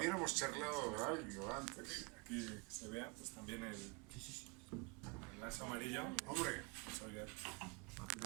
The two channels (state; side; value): quieter; left; 30.4 dB